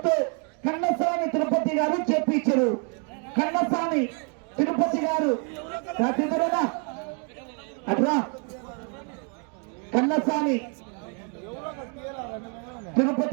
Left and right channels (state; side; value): quieter; left; 39.6 dB